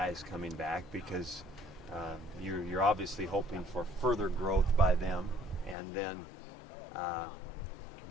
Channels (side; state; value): right; drops out; at 5.8 s